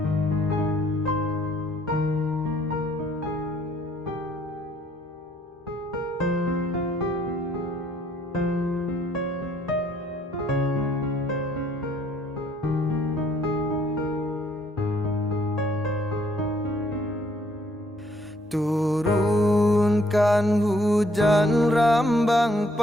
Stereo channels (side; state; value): both; normal; correlation 0.66